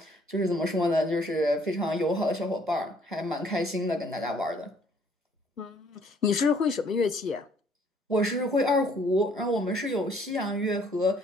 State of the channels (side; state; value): both; normal; correlation 0.62